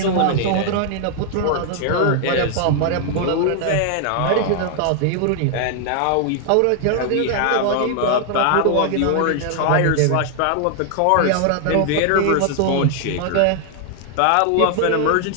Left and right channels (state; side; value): different; both; correlation 0.00